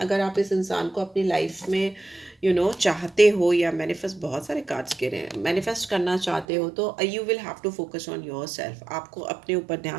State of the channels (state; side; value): drops out; left; at 6.5 s